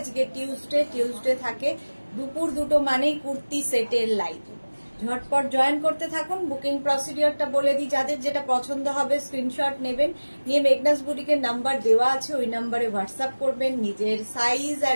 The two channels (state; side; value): inverted; both; correlation -1.00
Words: টিউসডে থাকে দুপুর 2টো মানেই কুর্তি সেটের লাইভ। ঝটপট জয়েন করতে থাকুন। বুকিং প্রসিডিওরটা বলে দিই, যাদের যেটা পছন্দ হবে স্ক্রিনশট নেবেন, নিয়ে মেঘনাস বুটিকের নাম্বার দেওয়া আছে, ওই নাম্বারে হোয়াটসঅ্যাপ করবেন নিজের সাইজ,